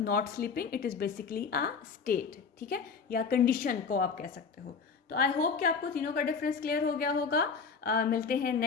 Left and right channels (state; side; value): quieter; right; 5.4 dB